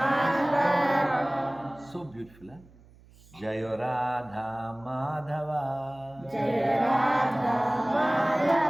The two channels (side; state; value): right; noise; hum, 26 dB below the sound